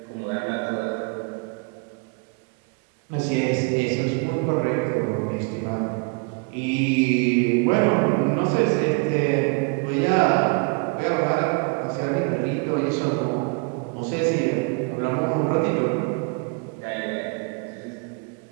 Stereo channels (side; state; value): left; quieter; 34.2 dB